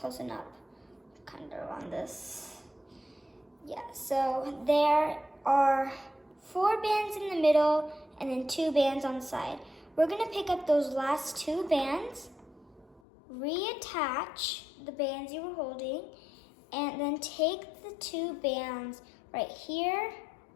it up, kind of on this. Yeah, so there are 4 bands in the middle and then 2 bands on the side. We're going to pick up those last 2 bands, reattach the bands you were holding, and then take the 2 bands right here,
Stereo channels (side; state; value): right; drops out; at 13.0 s